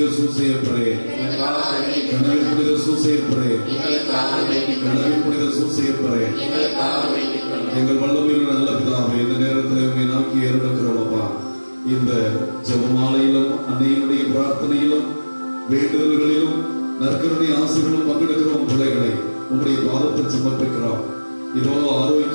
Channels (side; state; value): both; inverted; correlation -1.00